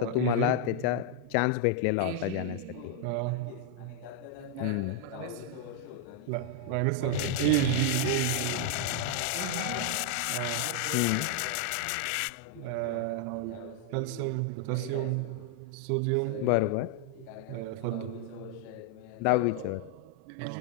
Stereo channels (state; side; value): different; both; correlation 0.00